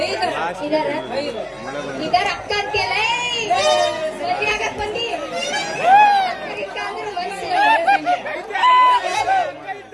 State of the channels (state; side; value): identical; both; correlation 1.00